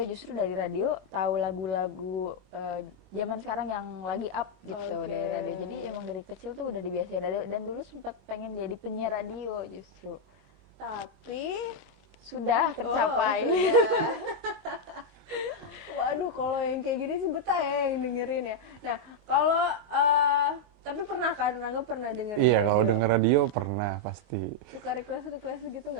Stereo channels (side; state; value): left; late; 23 ms